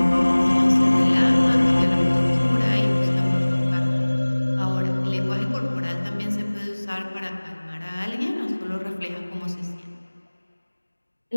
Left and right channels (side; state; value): both; inverted; correlation -1.00